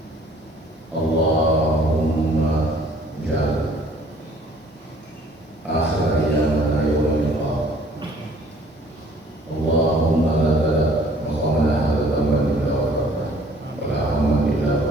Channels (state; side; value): normal; both; correlation 0.56